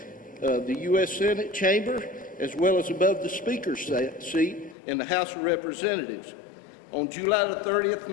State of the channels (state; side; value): drops out; right; at 4.8 s